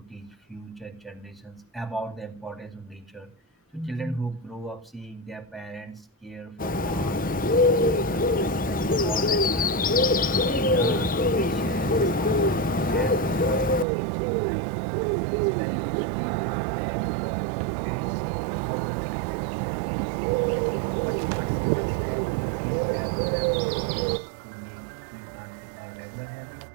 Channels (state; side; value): drops out; left; at 13.9 s